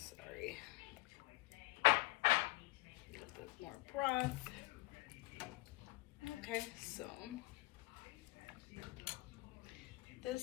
A little bit more broth. Okay, so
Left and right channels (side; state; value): right; quieter; 21.3 dB